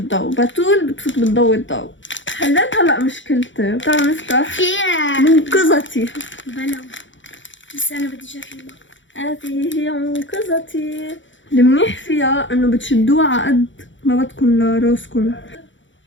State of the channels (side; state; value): right; late; 0.55 ms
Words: بتول بتفوت بتضوي الضوء. حليت هلا مشكلتي، تعالوا نفتح فيها منقذتي. بلا بس أنا بدي أجربها. هذه هي منقذتي. المنيح فيها انه بتشدوها على قد ما بدكم لراسكم.